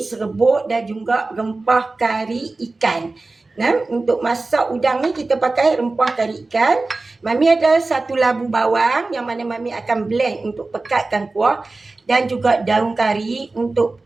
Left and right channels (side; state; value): left; quieter; 3.4 dB